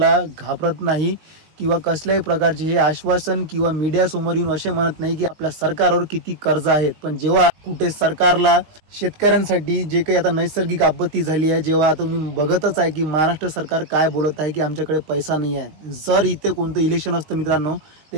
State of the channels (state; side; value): late; left; 19 ms